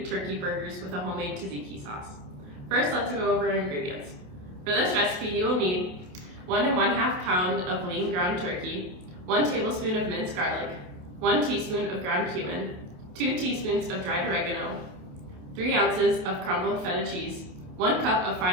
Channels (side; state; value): left; late; 28 ms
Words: turkey burgers with a homemade tzatziki sauce. First, let's go over our ingredients. For this recipe, you will need 1 1/2 pound of lean ground turkey, 1 tablespoon of minced garlic, 1 teaspoon of ground cumin, 2 teaspoons of dried oregano, 3 ounces of crumbled feta cheese, 1 cup of